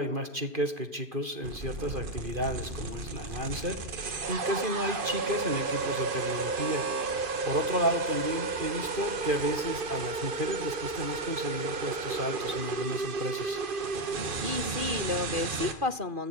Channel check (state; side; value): late; left; 2.5 ms